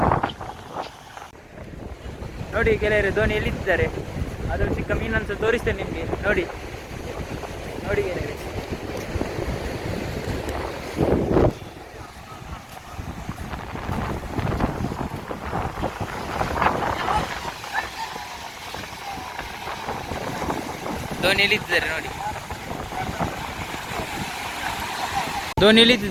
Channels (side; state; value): both; identical; correlation 1.00